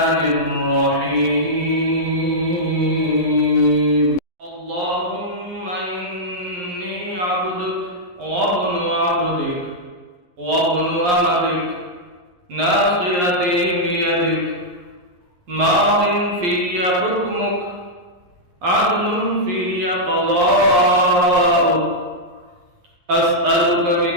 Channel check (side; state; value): left; late; 11 ms